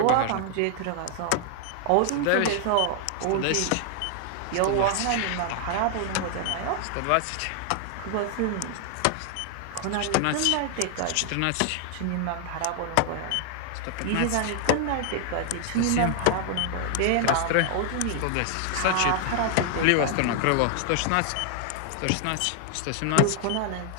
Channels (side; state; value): both; different; correlation 0.00